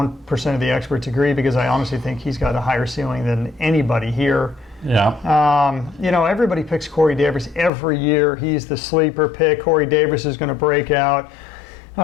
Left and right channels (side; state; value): right; drops out; at 7.7 s